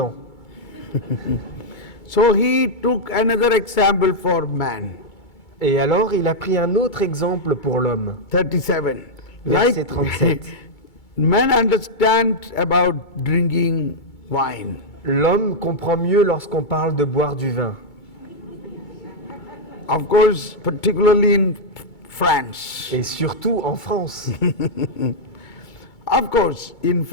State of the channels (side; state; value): right; late; 2.3 ms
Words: So he took another example for man. Et alors, il a pris un autre exemple pour l'homme. 37. Verset 37. Men understand about drinking wine. L'homme comprend mieux lorsqu'on parle de boire du vin. Of course, particularly in France. Et surtout en France. Of course, in